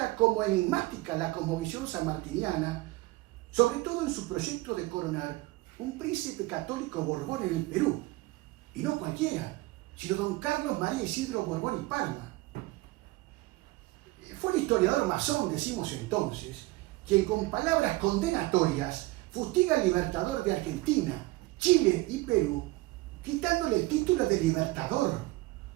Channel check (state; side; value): quieter; left; 20.3 dB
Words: como enigmática la cosmovisión sanmartiniana, sobre todo en su proyecto de coronar un príncipe católico Borbón en el Perú, y no cualquiera, sino don Carlos María Isidro Borbón y Parma. Fue el historiador masón, decimos entonces, quien con palabras condenatorias fustiga al libertador de Argentina, Chile y Perú, quitándole el título de libertador,